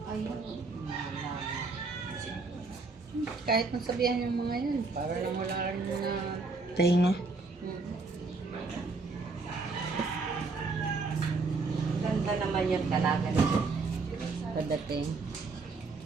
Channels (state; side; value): quieter; left; 4.0 dB